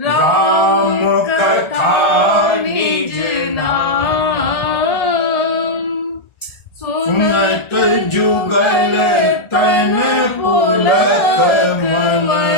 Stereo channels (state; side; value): late; right; 1.4 ms